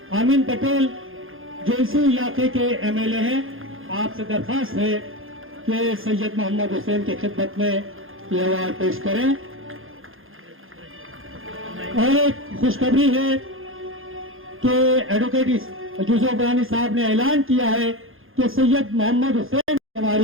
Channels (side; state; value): left; late; 0.60 ms